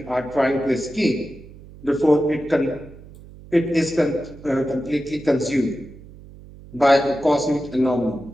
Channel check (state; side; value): noise; right; hum, 19 dB below the sound